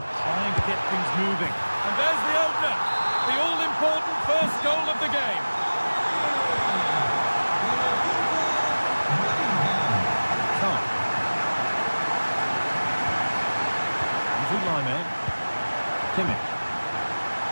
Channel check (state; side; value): inverted; both; correlation -1.00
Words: trying to get things moving. And there's the opener. The all-important first goal of the game.